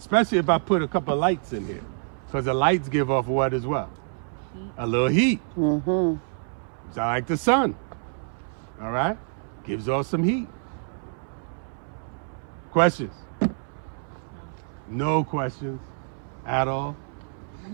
if I put a couple of lights in here. Because the lights give off what as well? A little heat. It's like the sun. All right? Gives off some heat. Questions? No questions at all?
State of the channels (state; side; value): silent; left; 60 dB below the other